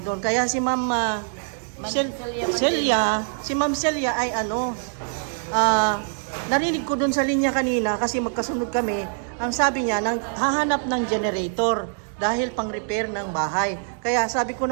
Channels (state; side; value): silent; left; digital silence